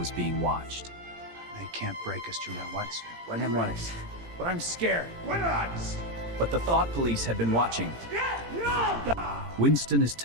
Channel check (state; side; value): late; left; 18 ms